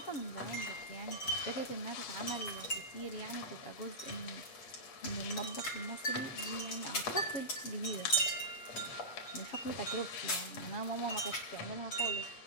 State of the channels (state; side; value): late; right; 7.8 ms